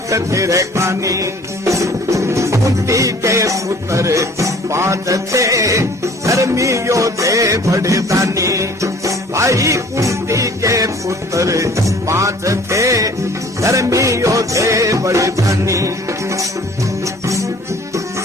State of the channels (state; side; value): normal; both; correlation 0.52